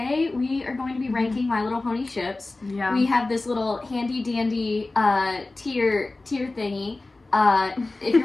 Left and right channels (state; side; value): quieter; right; 3.2 dB